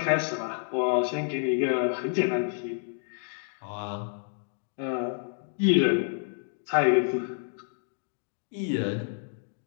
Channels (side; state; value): right; silent; digital silence